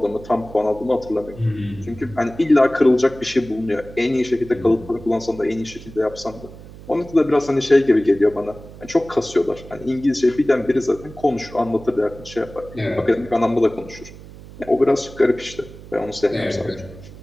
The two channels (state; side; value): noise; right; hum, 17 dB below the sound